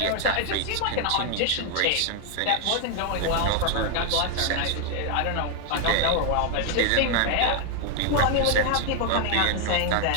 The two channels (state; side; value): different; both; correlation 0.00